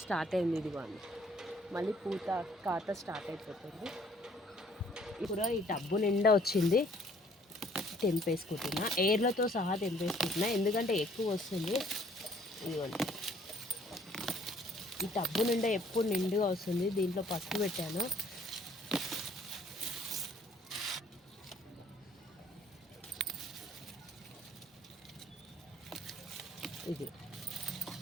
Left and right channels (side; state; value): both; normal; correlation 0.60